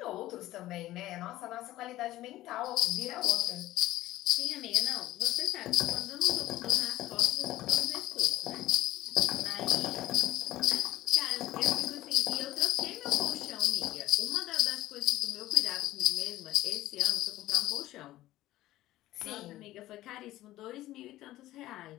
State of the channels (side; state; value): right; quieter; 15.5 dB